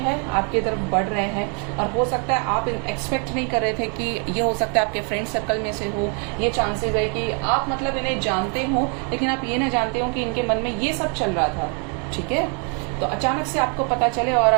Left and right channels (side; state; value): left; quieter; 37.0 dB